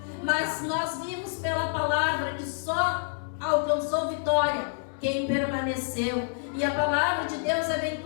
Mas nós vimos pela palavra que só alcançou vitória quem permaneceu. E a palavra de Deus é bem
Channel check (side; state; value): right; silent; digital silence